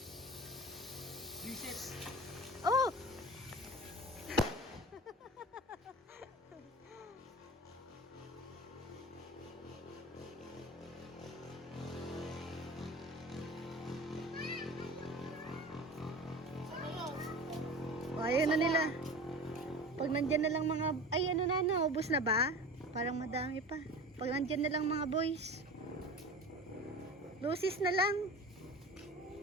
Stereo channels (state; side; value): normal; both; correlation 0.35